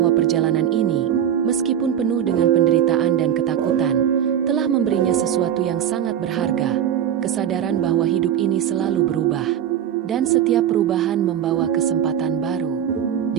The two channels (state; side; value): quieter; left; 9.8 dB